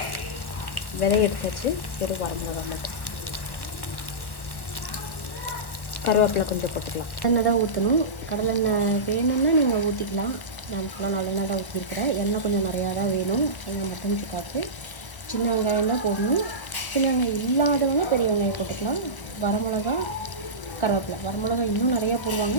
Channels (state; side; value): late; right; 1.1 ms